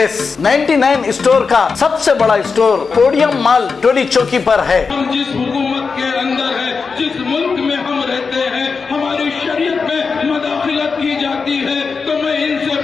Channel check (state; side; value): quieter; right; 5.0 dB